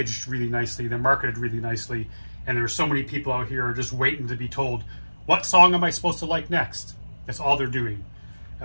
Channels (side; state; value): both; inverted; correlation -1.00